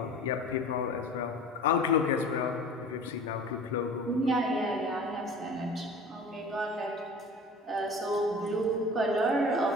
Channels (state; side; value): normal; both; correlation 0.40